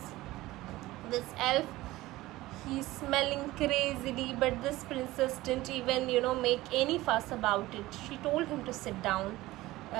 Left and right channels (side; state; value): left; quieter; 17.9 dB